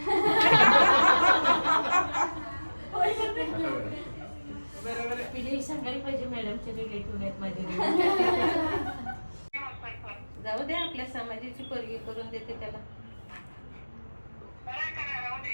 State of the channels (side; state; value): both; inverted; correlation -1.00